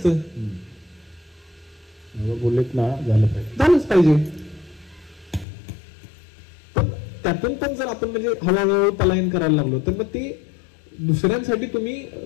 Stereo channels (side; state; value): right; drops out; at 5.5 s